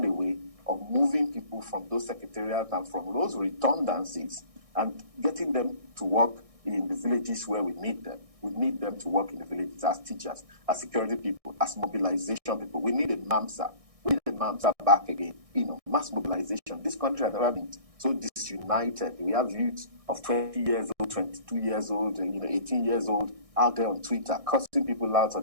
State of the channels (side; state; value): left; late; 1.6 ms